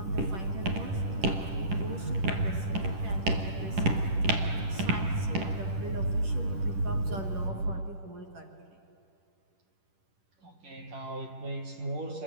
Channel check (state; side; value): late; left; 10 ms